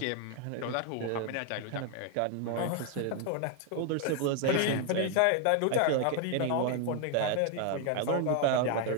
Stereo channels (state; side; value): different; both; correlation 0.00